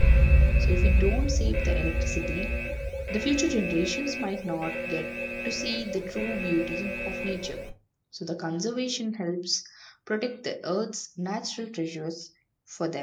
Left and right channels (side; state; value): both; identical; correlation 1.00